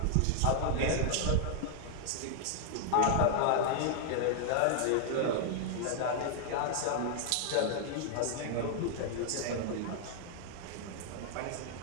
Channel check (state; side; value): different; both; correlation -0.01